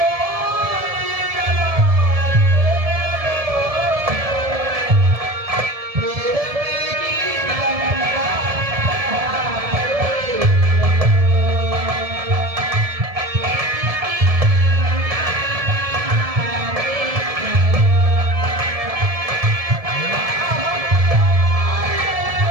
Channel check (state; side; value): late; left; 1.7 ms